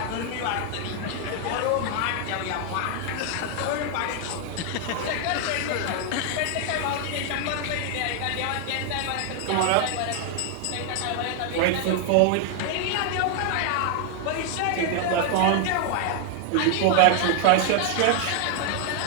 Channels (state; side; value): different; both; correlation 0.00